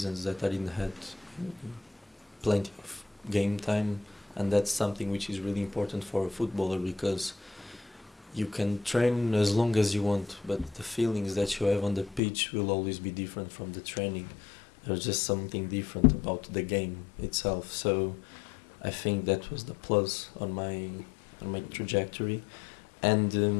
that I didn't had plenty of game time, and that's something which is really important for a footballer, because you can train as long as you want, but the feelings that you have on the pitch will always be different from the training. There's just something different about the game itself. So I think that was the plus on my trajectory. And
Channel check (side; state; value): right; drops out; at 12.2 s